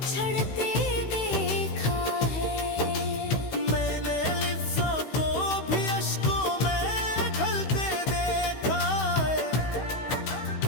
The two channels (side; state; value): right; late; 16 ms